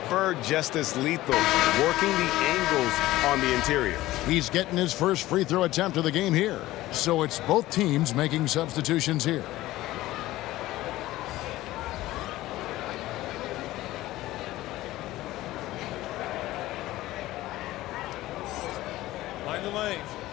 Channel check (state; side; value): quieter; right; 16.6 dB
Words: Bird just as lethal, working the angles on the interior. He's getting his first free throw attempt of the game here. So it's both teams making substitutions here. Mind the lanes.